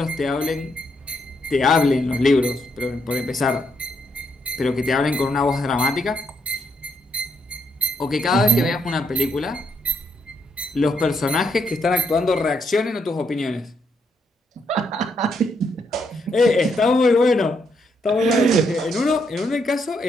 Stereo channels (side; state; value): both; normal; correlation 0.77